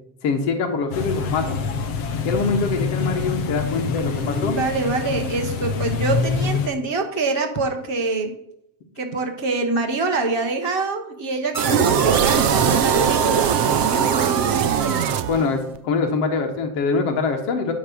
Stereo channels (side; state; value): right; late; 7.5 ms